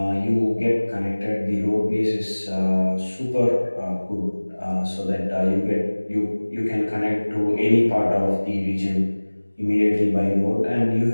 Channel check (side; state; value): both; inverted; correlation -1.00